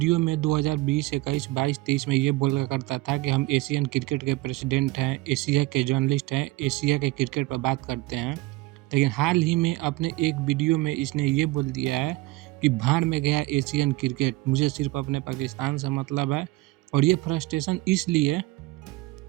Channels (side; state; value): left; quieter; 20.3 dB